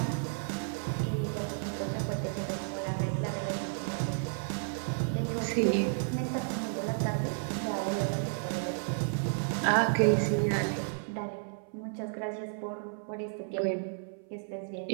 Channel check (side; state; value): left; silent; 56 dB below the other